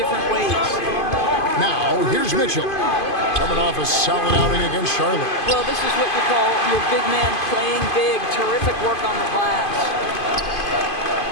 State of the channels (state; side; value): late; right; 2.5 ms